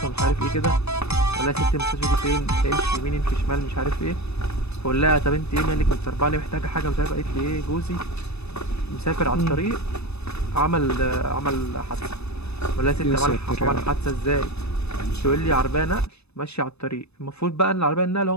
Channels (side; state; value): right; late; 0.80 ms